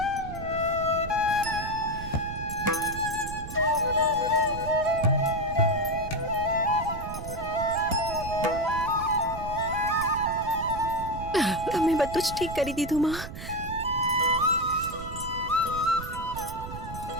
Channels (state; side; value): noise; right; rumble, 10 dB below the sound